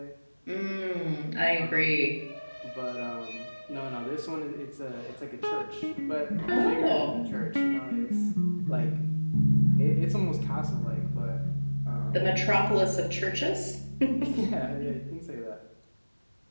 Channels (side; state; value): both; inverted; correlation -1.00